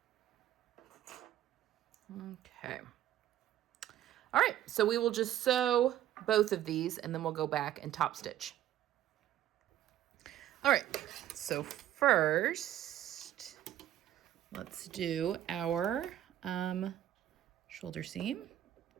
Okay. All right, so we will just sew both of these and then we'll go back and top stitch. All right, so first, let's do our shoulder seam.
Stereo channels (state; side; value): quieter; left; 12.3 dB